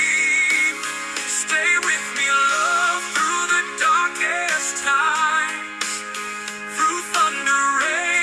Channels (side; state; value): both; identical; correlation 1.00